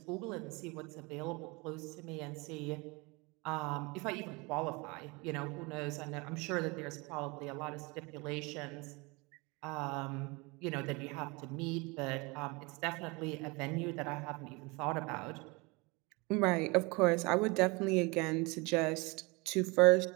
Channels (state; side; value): quieter; left; 26.7 dB